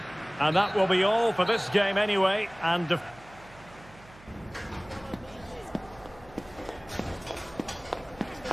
And that will be all for this game anyway. And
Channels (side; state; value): right; noise; hum, 22 dB below the sound